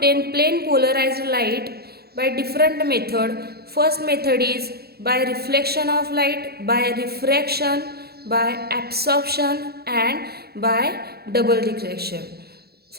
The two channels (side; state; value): left; late; 0.46 ms